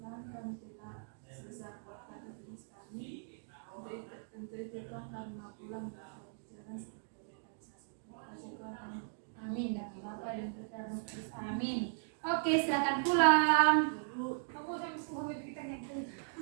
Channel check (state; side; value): silent; left; digital silence